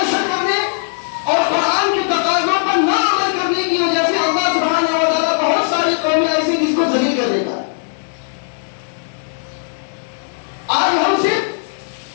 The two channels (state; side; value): silent; right; digital silence